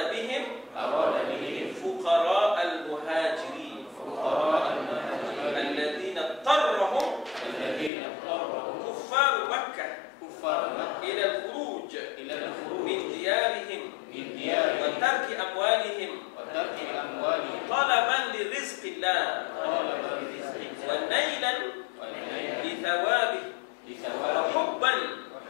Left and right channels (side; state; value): right; drops out; at 7.9 s